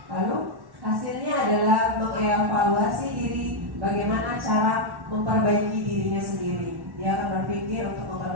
Lalu hasilnya adalah mengevaluasi diri, bagaimana cara memperbaiki dirinya sendiri. Dia akan berpikir untuk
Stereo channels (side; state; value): left; late; 1.1 ms